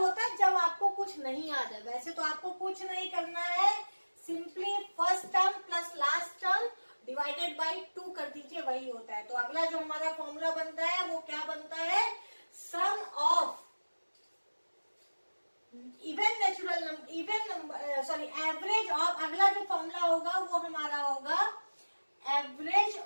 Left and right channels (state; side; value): inverted; both; correlation -1.00